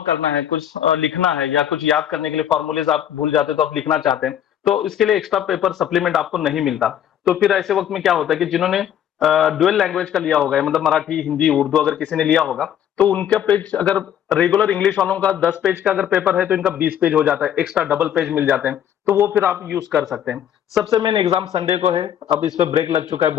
करना है, कुछ लिखना है या कुछ याद करने के लिए फॉर्मूलेज आप भूल जाते हैं तो आप लिखना चाहते हैं, तो इसके लिए एक्स्ट्रा पेपर सप्लीमेंट आपको नहीं मिलता। तो फिर ऐसे वक्त में क्या होता है कि जिन्होंने डुअल लैंग्वेज का लिया होगा, मतलब मराठी हिंदी उर्दू अगर किसी ने लिया होगा, तो उनका पेज अगर रेगुलर इंग्लिश वालों का 10 पेज का अगर पेपर है तो इनका 20 पेज हो जाता है, एक्स्ट्रा डबल पेज मिल जाते हैं, तो वो फिर आप यूज कर सकते हैं। सबसे मेन एग्जाम संडे को है। अब इस पे ब्रेक लग चुका है,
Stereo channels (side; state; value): right; quieter; 10.1 dB